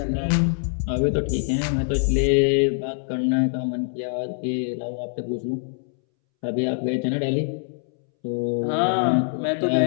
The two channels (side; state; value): right; silent; 63 dB below the other